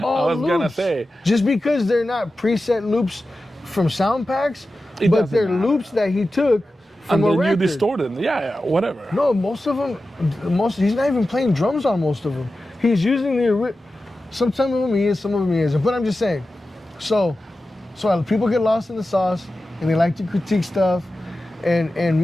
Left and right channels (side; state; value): both; normal; correlation 0.93